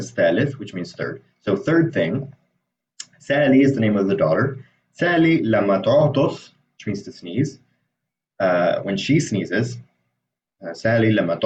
ثالث, which means third. So third thing, Sally is the name of the daughter. Sally لما تعطس, which means to sneeze. When she sneezes, Sally لما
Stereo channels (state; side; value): identical; both; correlation 1.00